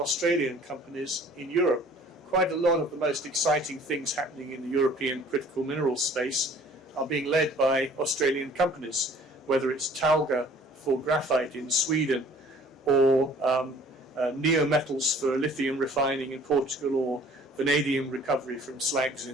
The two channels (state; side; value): normal; both; correlation 0.52